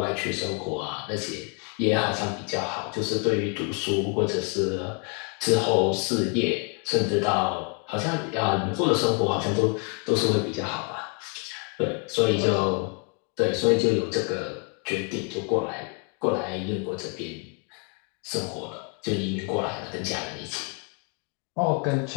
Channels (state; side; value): quieter; right; 37.6 dB